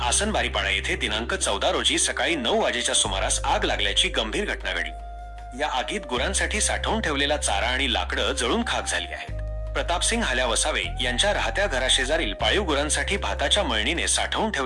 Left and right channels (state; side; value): identical; both; correlation 1.00